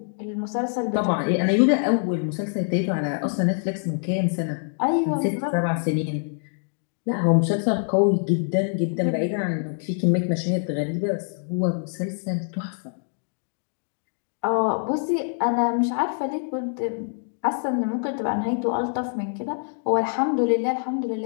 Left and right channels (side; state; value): right; silent; 62 dB below the other